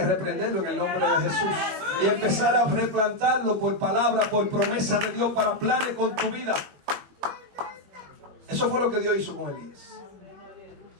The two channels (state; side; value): late; left; 21 ms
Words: reprenderlo en el nombre de Jesús. Y empezar a replantarlo por palabra, por promesa de Dios, para planes con tu vida. Eso fue lo que Dios hizo con Elías.